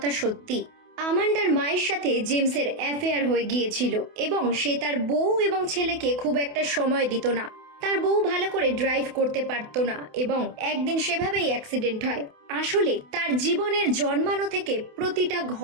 সত্যি, আমান্ডার মায়ের সাথে জেমসের অ্যাফেয়ার হয়ে গিয়েছিল এবং সে তার বউ এবং ছেলেকে খুব একটা সময় দিত না। তার বউ ভালো করে ড্রাইভ করতে পারতো না এবং একদিন সেভাবেই অ্যাক্সিডেন্ট হয়। আসলে তার জীবনের জন্মানো থেকে প্রতিটা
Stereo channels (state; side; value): late; left; 28 ms